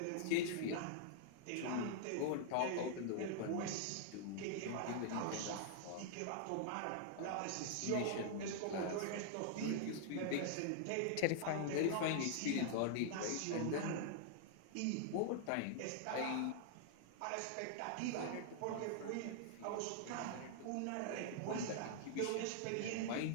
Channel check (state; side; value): different; both; correlation -0.01